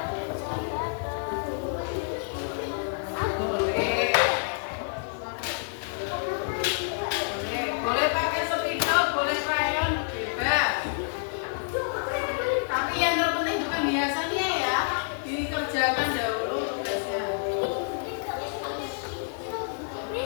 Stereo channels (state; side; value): silent; right; digital silence